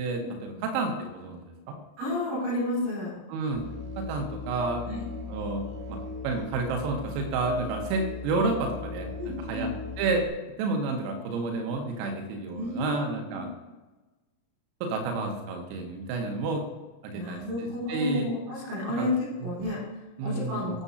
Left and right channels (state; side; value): late; left; 34 ms